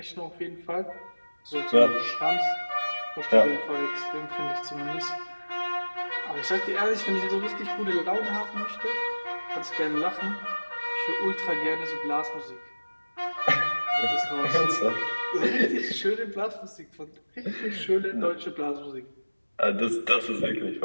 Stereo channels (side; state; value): both; inverted; correlation -1.00